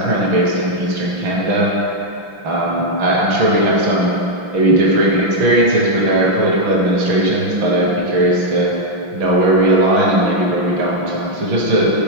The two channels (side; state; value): left; late; 6.0 ms